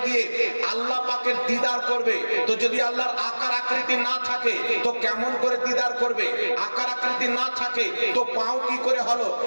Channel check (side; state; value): both; inverted; correlation -1.00